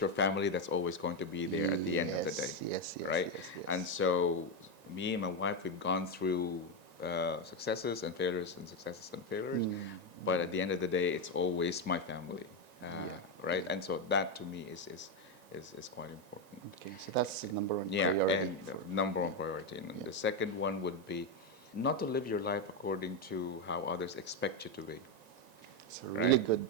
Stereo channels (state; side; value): late; left; 1.9 ms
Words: family that's always going to be there at the end of the day, Yes, yes, right? yes, yes. And so me and my wife, we've gone through successes and failures and successes and failures, but at the end of the day, it's always my family, right? And so that to me is quite important. Okay, so that's the number one Yeah, priority. and the number one priority. And the second one would be not to live your life according to how others expect you to be. It's a really Right? good